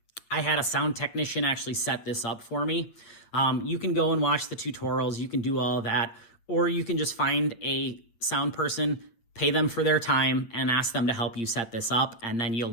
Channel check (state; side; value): late; right; 8.7 ms